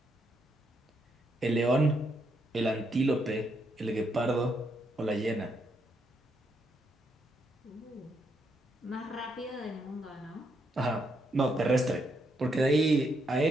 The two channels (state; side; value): normal; both; correlation 0.77